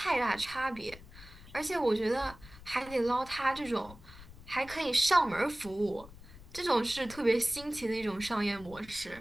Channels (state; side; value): noise; left; rumble, 18 dB below the sound